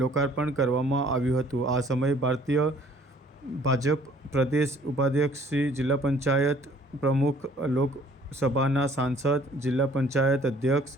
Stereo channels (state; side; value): normal; both; correlation 0.57